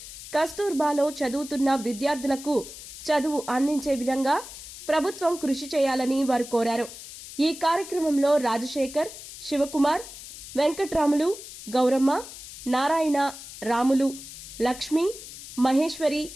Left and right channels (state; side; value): noise; left; hiss, 13 dB below the sound